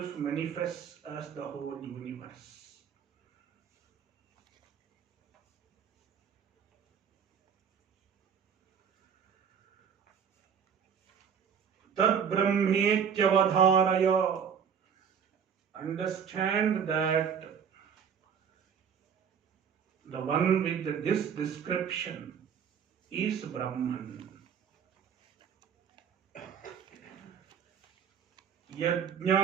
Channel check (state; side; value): quieter; left; 7.4 dB